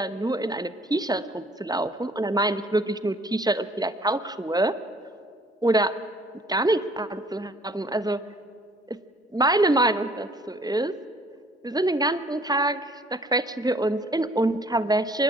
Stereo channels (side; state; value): both; normal; correlation 0.57